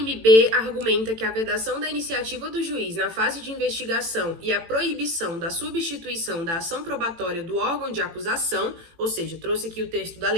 argumenta que a vedação da iniciativa do juiz na fase de investigação e a proibição da substituição da ação probatória do órgão de acusação, ou seja, trouxe aqui o texto da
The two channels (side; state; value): left; late; 18 ms